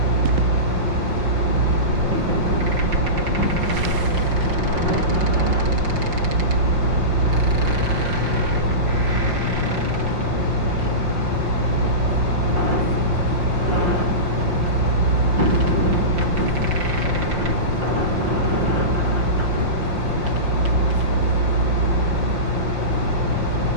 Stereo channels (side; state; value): left; late; 5.7 ms